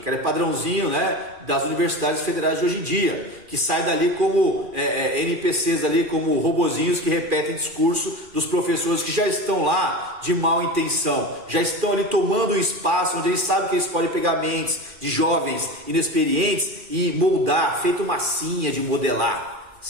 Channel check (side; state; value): left; late; 2.4 ms